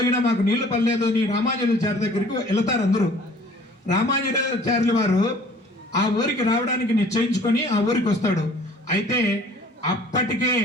మాకు నీళ్లు పడలేదు అని రామానుజాచార్య దగ్గరికి వెళతారు. అందరూ రామానుజాచార్యుల వారు ఆ ఊరికి రావడానికి నిశ్చయించుకొని ఆ ఊరికి వస్తాడు. అయితే అప్పటికే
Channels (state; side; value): normal; both; correlation 0.52